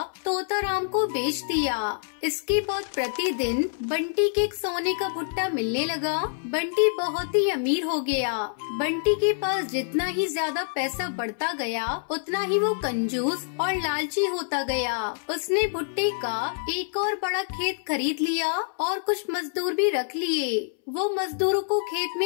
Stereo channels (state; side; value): silent; right; 61 dB below the other